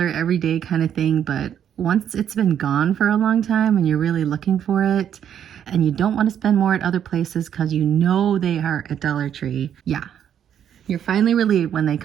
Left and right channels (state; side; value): quieter; left; 9.3 dB